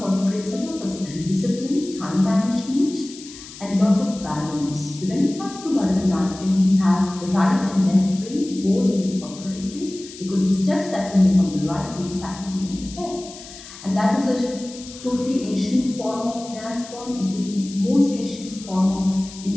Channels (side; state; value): left; noise; hiss, 16 dB below the sound